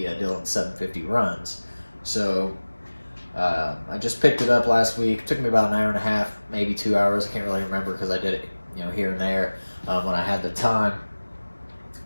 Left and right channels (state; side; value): inverted; both; correlation -1.00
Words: Dillon 750 runs. So I just picked it up last week. It took me about an hour and a half, maybe 2 hours. I can't really remember because I did it, here and there when I had the time,